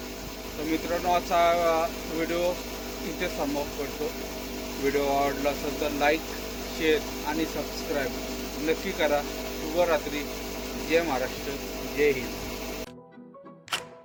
तर मित्रांनो, आजचा व्हिडिओ इथे समाप्त करतो. व्हिडिओ आवडला असेल तर लाईक, शेअर आणि सबस्क्राईब नक्की करा. शुभरात्री. जय महाराष्ट्र, जय हिंद.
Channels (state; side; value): identical; both; correlation 1.00